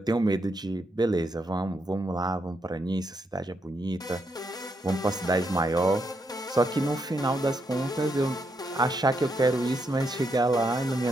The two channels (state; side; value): normal; both; correlation 0.80